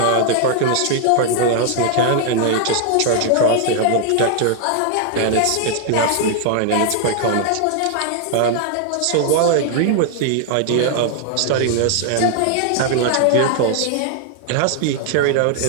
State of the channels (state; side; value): different; both; correlation 0.00